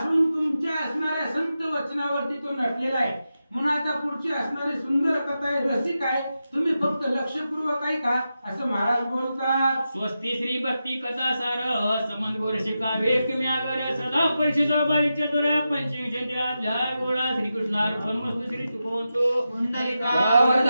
तुमच्या असणाऱ्या संत वचनावरती तो नटलेला आहे. म्हणून आता पुढची असणारी सुंदर कथा आहे, रसिक आहे, तुम्ही फक्त लक्षपूर्वक ऐका असं महाराज बोलतात. स्वस्ती श्री भक्ती कथा सार समंत गोरशिका वेकम्यागर सदा परिषदा बाईच्या दोऱ्या पंचविंशत्या अध्याय गोळा श्रीकृष्णार्पण मस्तु. श्री तुकोंतो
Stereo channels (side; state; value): both; inverted; correlation -0.90